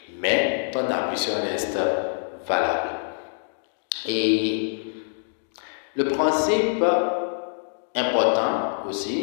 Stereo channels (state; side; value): silent; right; digital silence